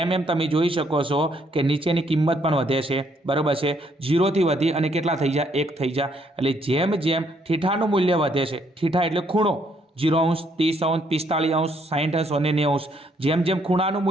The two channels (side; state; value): both; normal; correlation 0.70